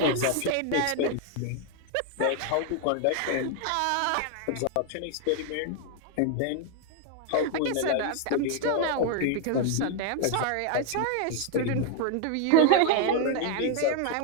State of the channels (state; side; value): different; both; correlation 0.00